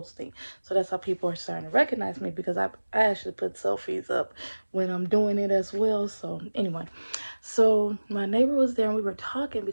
So that's how people are starting to recognize me, because I actually put selfies up when I'm doing it as well. So anyway, so my neighbor was there and we were talking,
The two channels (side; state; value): both; inverted; correlation -1.00